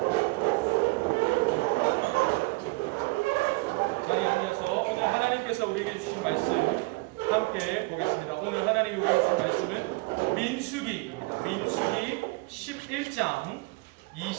자리에 앉아서 오늘 하나님께서 우리에게 주신 말씀 함께 보겠습니다. 오늘 하나님이 우리에게 주신 말씀은 민수기입니다. 민수기 11장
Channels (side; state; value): left; quieter; 26.1 dB